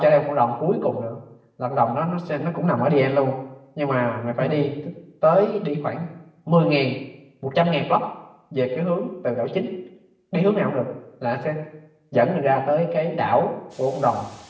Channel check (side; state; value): both; identical; correlation 1.00